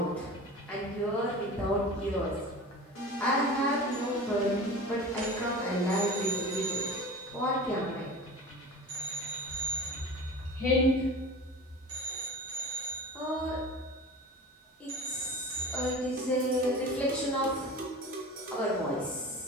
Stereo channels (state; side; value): normal; both; correlation 0.34